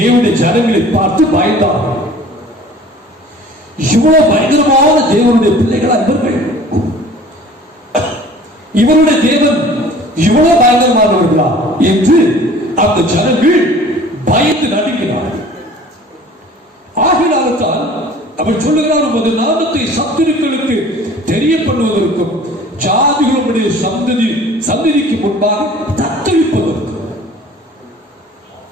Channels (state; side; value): normal; both; correlation 0.47